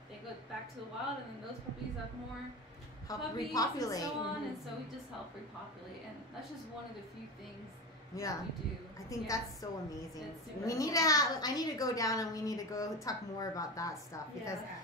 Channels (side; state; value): both; normal; correlation 0.23